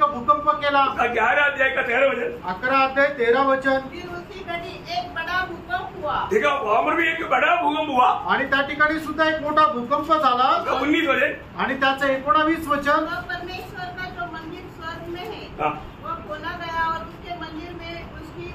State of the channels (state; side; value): identical; both; correlation 1.00